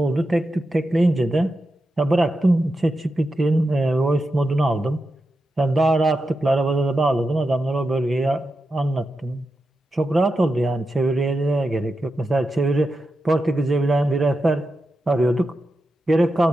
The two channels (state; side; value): normal; both; correlation 0.89